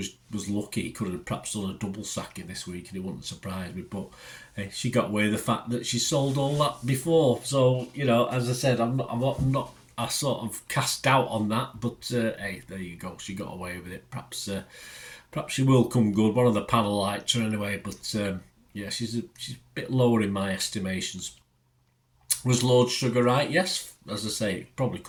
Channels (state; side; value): identical; both; correlation 1.00